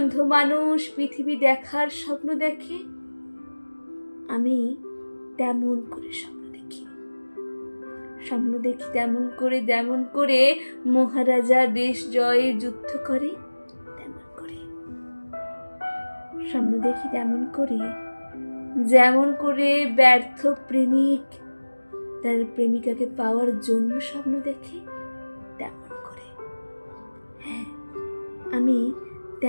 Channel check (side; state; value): both; inverted; correlation -1.00